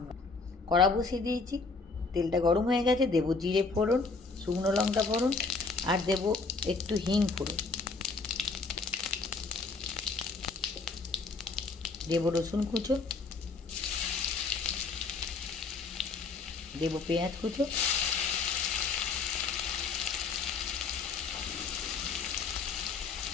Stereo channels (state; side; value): quieter; right; 4.2 dB